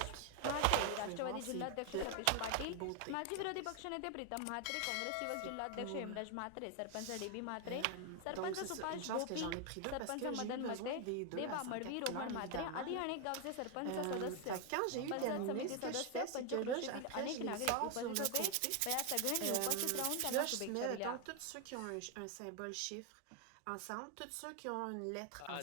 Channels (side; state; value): both; different; correlation 0.01